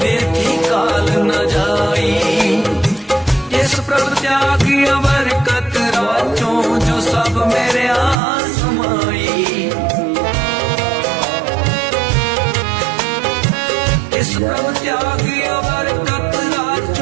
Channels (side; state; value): left; drops out; at 8.2 s